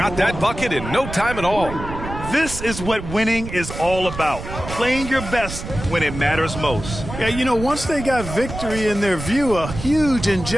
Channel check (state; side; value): noise; right; rumble, 9 dB below the sound